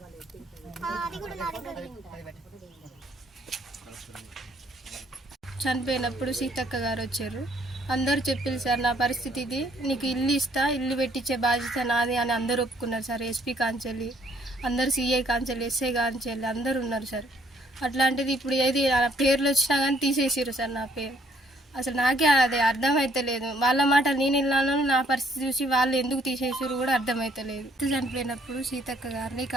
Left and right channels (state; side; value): normal; both; correlation 0.65